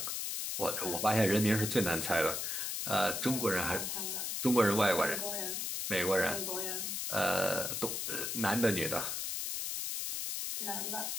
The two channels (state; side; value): noise; left; hiss, 2 dB below the sound